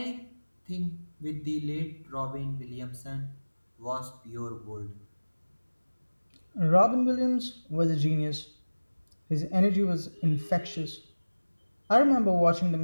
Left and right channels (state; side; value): inverted; both; correlation -1.00